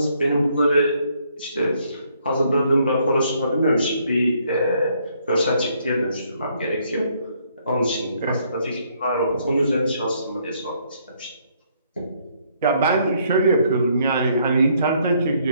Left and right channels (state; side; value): inverted; both; correlation -0.69